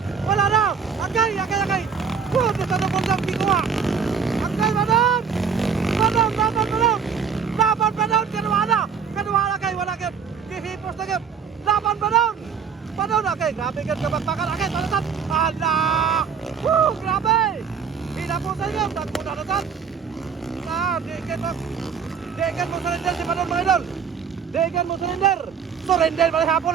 Wala na. Akay. Di sa nabundang gikuha. Akay madam. Madam. Laban padon kedua na. Kedua na kay wala kay gihipos na kay. Laban padon. Padon na kay grabe kay kabakbakan akay talasan. Allah. Grabe. Inapasay gam tagpunan na tan. Dekan mo surrender si Padon mga idol. Dekan mo surrender. Surrender balik hapon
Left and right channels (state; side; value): quieter; left; 6.7 dB